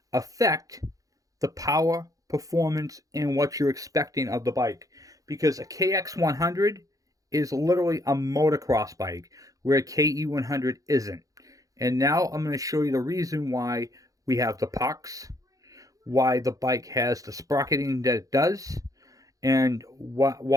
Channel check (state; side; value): late; left; 0.17 ms